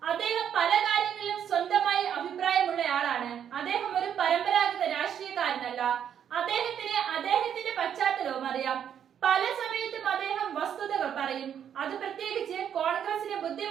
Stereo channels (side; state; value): left; quieter; 8.9 dB